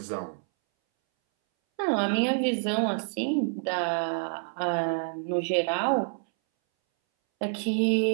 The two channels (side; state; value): left; silent; 60 dB below the other